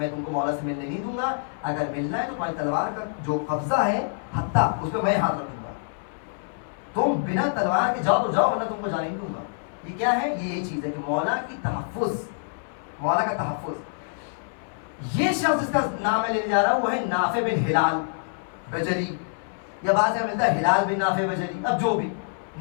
تم کو مولا سے ملنے نہیں دوں گا, اگر ملنا ہے تو تمہاری تلوار کا جو قبضہ ہے ہتھا اس پہ میں ہاتھ رکھوں گا, تم بنا تلوار کے جاؤ تو جاؤ ورنہ تم کو جانے نہیں دوں گا. یہ کیا ہے؟ یہ چیز ہے کہ مولا کی تحفظ, مولا کا تحفظ. یہ شخص جس کا نام میں لینے جا رہا ہوں وہ ہے نافع بن ہلال بجلی, یا بعض میں ملتا ہے ہلال بن نافع بجلی, اب جو بھی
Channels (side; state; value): right; silent; 61 dB below the other